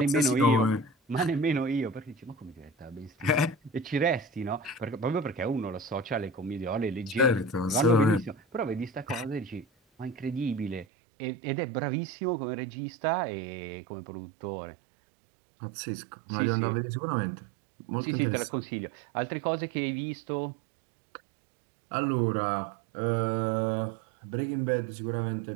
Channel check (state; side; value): drops out; left; at 10.9 s